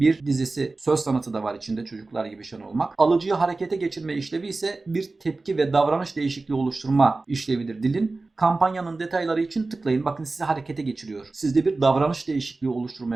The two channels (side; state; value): left; quieter; 3.5 dB